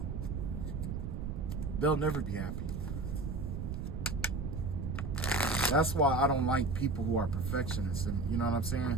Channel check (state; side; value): noise; right; rumble, 3 dB below the sound